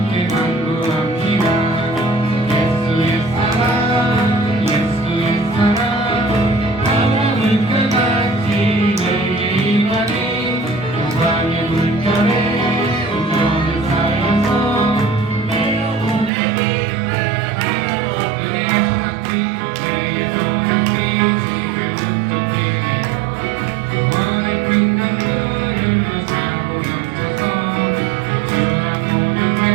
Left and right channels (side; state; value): left; drops out; at 16.3 s